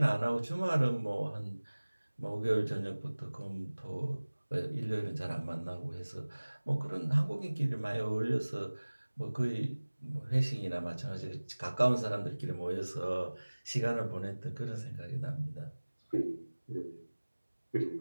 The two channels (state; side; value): inverted; both; correlation -1.00